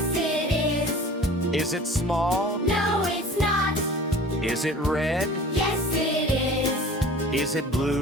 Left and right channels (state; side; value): normal; both; correlation 0.43